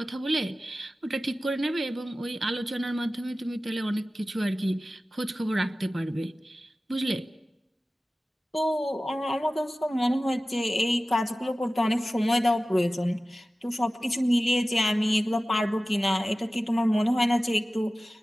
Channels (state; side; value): normal; both; correlation 0.96